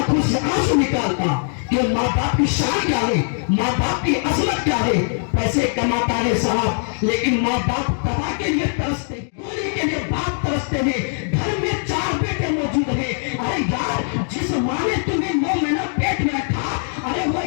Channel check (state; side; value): silent; right; 64 dB below the other